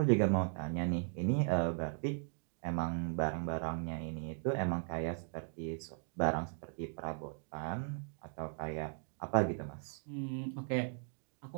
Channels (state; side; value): silent; left; 53 dB below the other